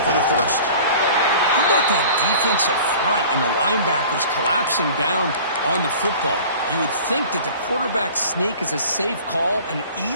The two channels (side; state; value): both; inverted; correlation -0.44